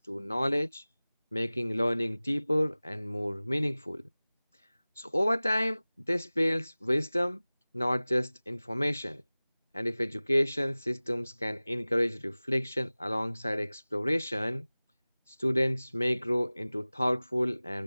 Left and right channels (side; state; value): both; inverted; correlation -0.99